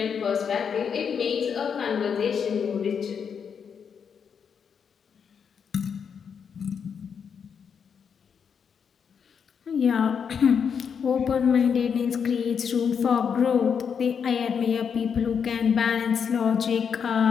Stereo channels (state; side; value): quieter; right; 6.9 dB